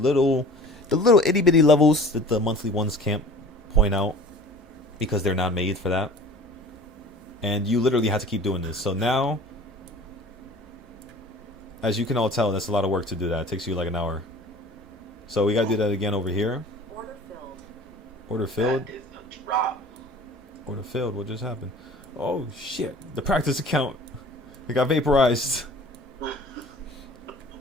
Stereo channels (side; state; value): both; normal; correlation 0.44